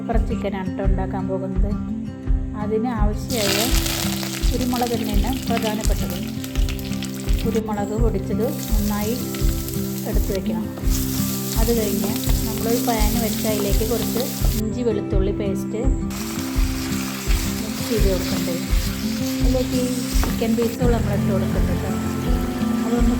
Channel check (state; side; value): identical; both; correlation 1.00